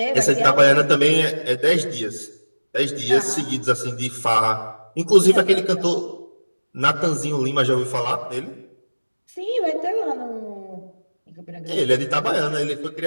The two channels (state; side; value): inverted; both; correlation -1.00